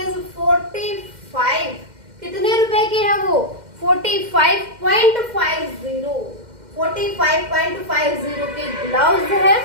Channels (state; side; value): late; left; 2.1 ms